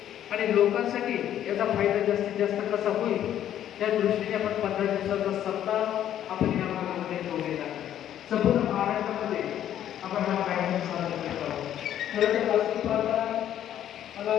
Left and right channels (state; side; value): quieter; right; 11.0 dB